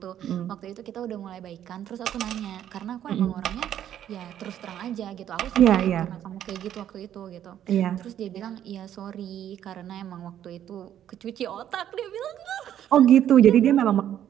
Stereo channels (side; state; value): left; quieter; 10.7 dB